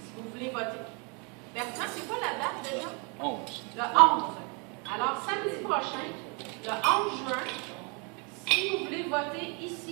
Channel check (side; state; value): left; quieter; 33.7 dB